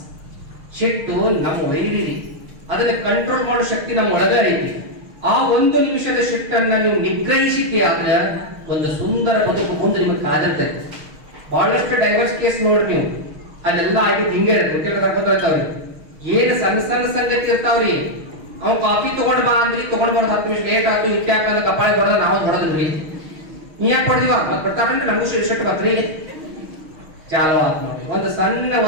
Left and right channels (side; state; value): left; late; 6.4 ms